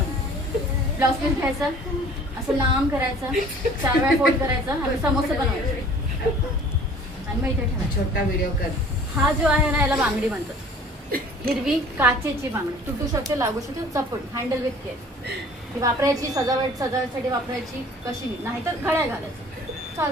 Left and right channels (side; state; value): both; normal; correlation 0.50